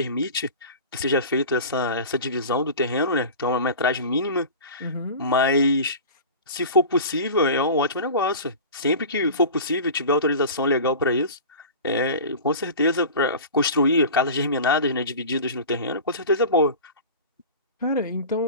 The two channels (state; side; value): inverted; both; correlation -0.35